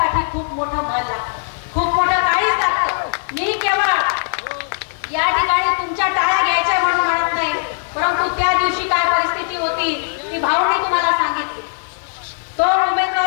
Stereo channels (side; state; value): right; silent; digital silence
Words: खूप मोठं मन लागतं, खूप मोठं काळीज लागतं. मी केवळ या ठिकाणी तुमच्या टाळ्या घ्यायच्या म्हणून म्हणत नाही, परंतु त्या दिवशी काय परिस्थिती होती ती भाऊंनी तुम्हाला सांगितली. तो